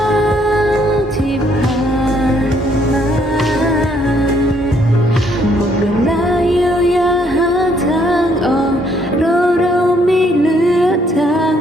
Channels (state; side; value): normal; both; correlation 0.68